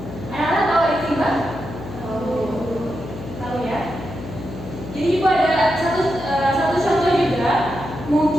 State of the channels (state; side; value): noise; left; hum, 11 dB below the sound